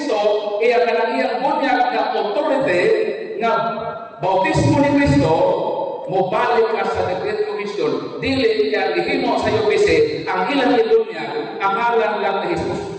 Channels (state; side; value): identical; both; correlation 1.00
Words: iya kanang iyang bunyag na authority na bautismo ni Kristo, mobalik ka sa Great Commission, dili kaya gihimo sa UPC ang ilang ibunyag ang ngalan lang ni